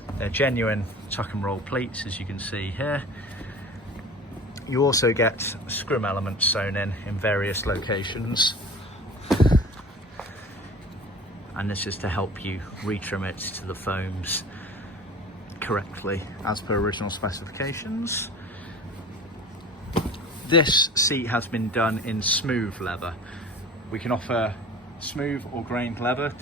They're genuine tuck and roll pleats, as you can see here. You also get scrim elements sewn in various locations, and this is to help you retrim it to the foams correctly as per original specifications. This seat has been done in smooth leather. We can offer smooth or grained leather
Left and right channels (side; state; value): both; normal; correlation 0.39